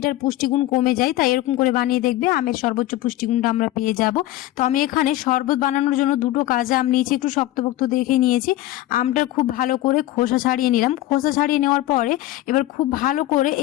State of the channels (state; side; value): quieter; right; 15.5 dB